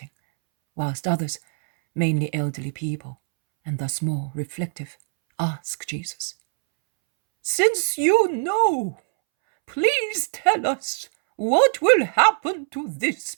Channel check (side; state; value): left; silent; 64 dB below the other